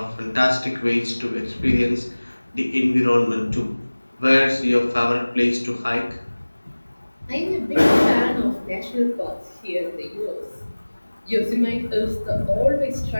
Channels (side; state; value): both; inverted; correlation -1.00